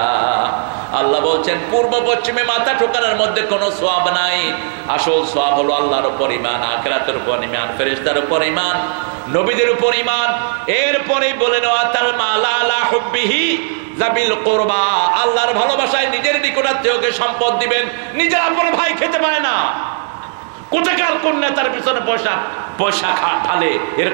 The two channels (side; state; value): left; silent; 69 dB below the other